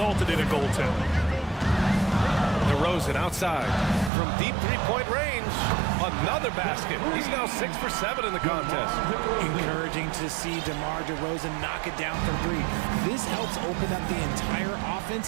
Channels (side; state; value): left; drops out; at 4.1 s